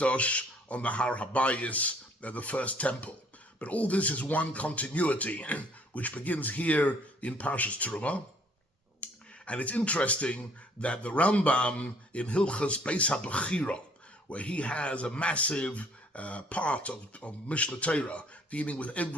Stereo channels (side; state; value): both; normal; correlation 0.60